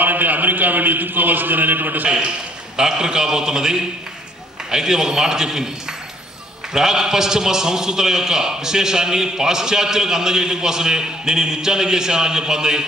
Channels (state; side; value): normal; both; correlation 0.61